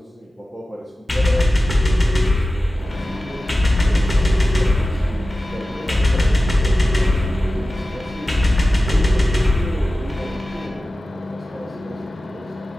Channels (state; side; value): normal; both; correlation 0.95